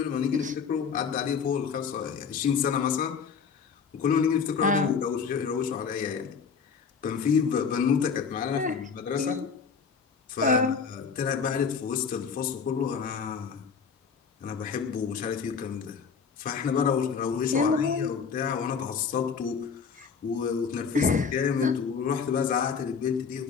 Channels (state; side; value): quieter; right; 6.0 dB